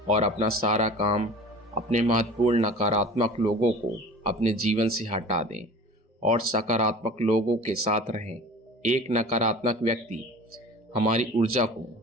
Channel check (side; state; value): both; normal; correlation 0.41